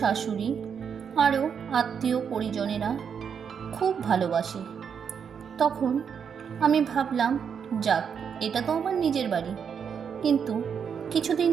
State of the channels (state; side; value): quieter; left; 7.1 dB